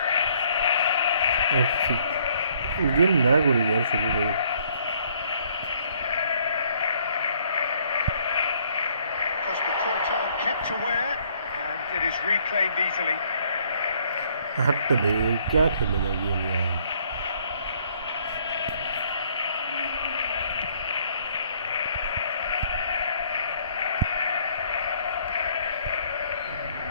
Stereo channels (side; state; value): both; inverted; correlation -0.65